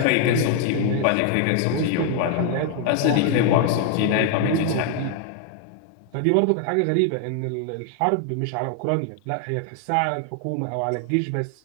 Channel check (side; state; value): both; different; correlation 0.00